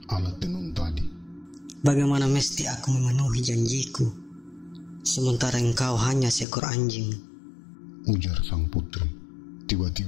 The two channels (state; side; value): drops out; right; at 6.5 s